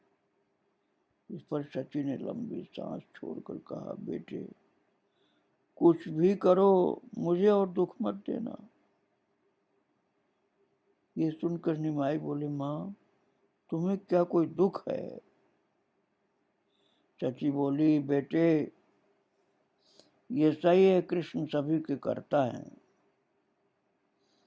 इस पर सची ने लंबी सांस छोड़कर कहा, बेटे, कुछ भी करो, मुझे और दुख मत देना। ये सुनकर निमाई बोले, माँ, तुम्हें क्या कोई दुख है? सची बोली, बेटे, ये सही है, कृष्ण सभी के करता है,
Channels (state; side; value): identical; both; correlation 1.00